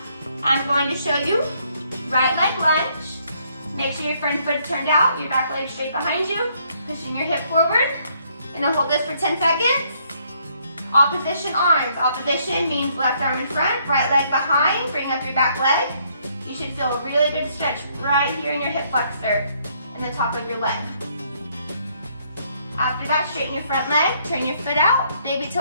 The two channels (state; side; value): inverted; both; correlation -0.69